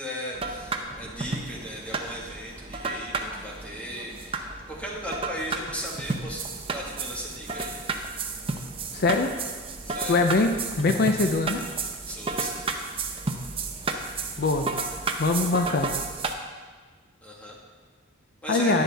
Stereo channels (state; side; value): normal; both; correlation 0.24